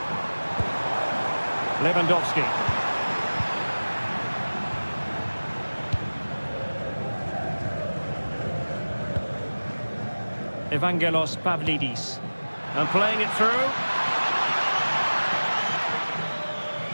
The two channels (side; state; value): both; inverted; correlation -1.00